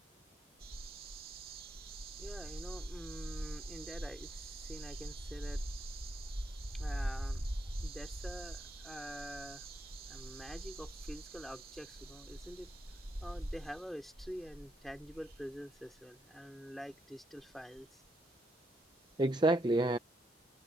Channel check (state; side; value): normal; both; correlation 0.79